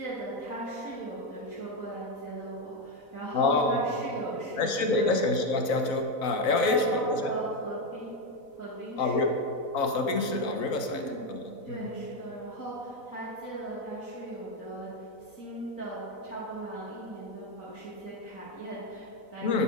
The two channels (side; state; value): right; late; 4.0 ms